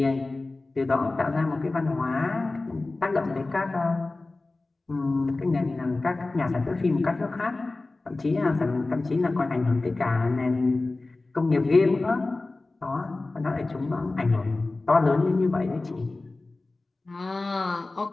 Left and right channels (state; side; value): quieter; right; 3.2 dB